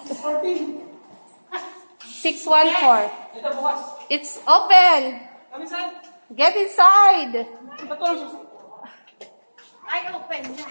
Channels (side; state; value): both; inverted; correlation -1.00